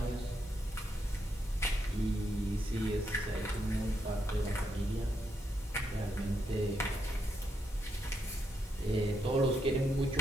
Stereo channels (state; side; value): normal; both; correlation 0.80